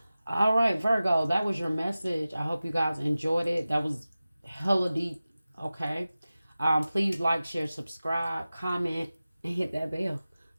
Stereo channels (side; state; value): both; inverted; correlation -0.96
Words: All right, Virgo, that was your message. I hope you guys enjoyed it. That was hella deep. Okay. Please like, share, subscribe, comment, and hit that bell.